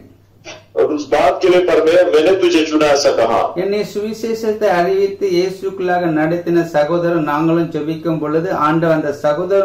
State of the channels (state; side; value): identical; both; correlation 1.00